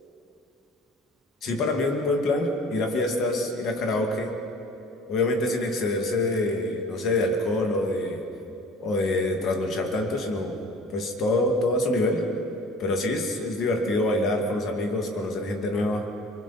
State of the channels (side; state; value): both; normal; correlation 0.45